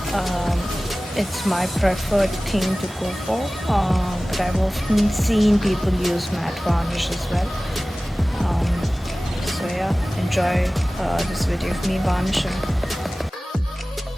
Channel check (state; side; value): normal; both; correlation 0.97